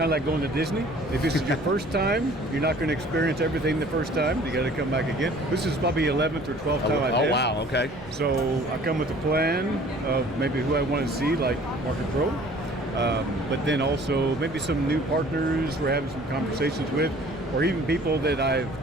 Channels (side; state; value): both; normal; correlation 0.51